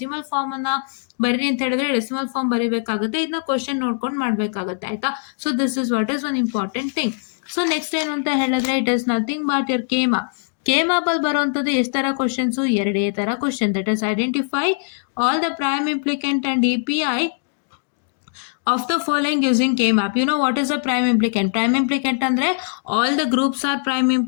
ಫಾರ್ಮ್ ಅನ್ನ ಬರೀ ಅಂತ ಹೇಳಿದ್ರೆ ಡೆಸಿಮಲ್ ಫಾರ್ಮ್ ಬರೀಬೇಕಾಗುತ್ತೆ. ಇದನ್ನ ಕ್ವಶನ್ ನೋಡ್ಕೊಂಡು ಮಾಡ್ಬೇಕಾಗತ್ತೆ. ಆಯ್ತಾ? So this is what is one important thing. So next ಏನು ಅಂತ ಹೇಳಿದ್ರೆ, it is nothing but your K-map ಅಲ್ಲಿ ಬರುವಂತದ್ದು ಎಷ್ಟು ತರ ಕ್ವಶನ್ಸ್, ಎರಡೇ ತರ question. That is identify all the prime implicant and EPI of the following using K-map. You know what is a prime implicant? Prime implicant andre all the groups are prime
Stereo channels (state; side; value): silent; right; digital silence